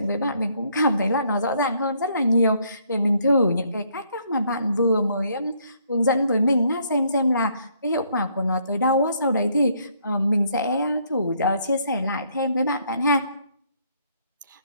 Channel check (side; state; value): both; inverted; correlation -0.68